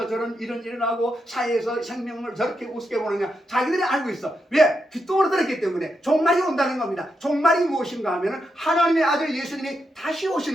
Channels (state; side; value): normal; both; correlation 0.84